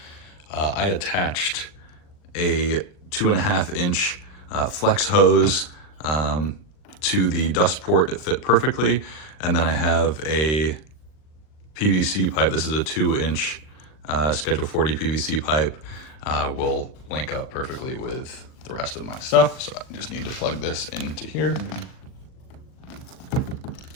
I attached a 2.5-inch flex hose to the dust port that fit perfectly. And then I have a PVC pipe. This is a 2-inch Schedule 40 PVC pipe. Will link up perfectly with the rest of my stuff. So I just need to plug this into here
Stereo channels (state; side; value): late; right; 39 ms